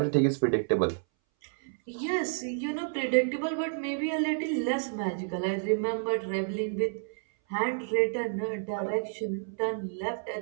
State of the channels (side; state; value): left; silent; 58 dB below the other